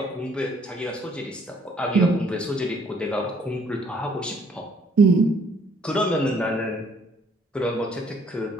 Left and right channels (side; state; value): both; normal; correlation 0.63